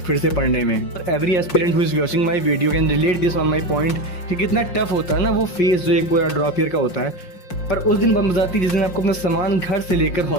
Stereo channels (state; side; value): late; right; 5.6 ms